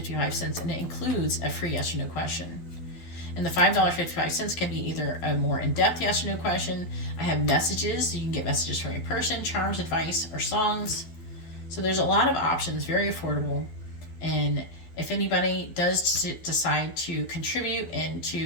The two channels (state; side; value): late; right; 12 ms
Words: and it includes a free yes or no question. And the $5.55 can be either a more in-depth yes or no question. I have messages. You can get messages from a person, charms, advice, or songs. So there's a lot of options, very affordable. And if anybody does decide to contribute and